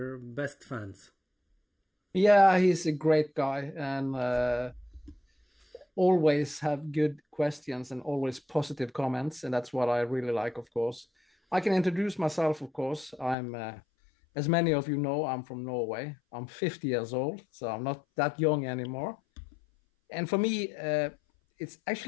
best fans. Yeah, he's a great guy, and always have good questions and always positive comments, and that's what I really like, of course. I can introduce myself, of course. I'm, as many of you know, I'm from Norway. I'm 50 years old, so I'm not that young anymore. And for me, it's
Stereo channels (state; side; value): drops out; right; at 13.4 s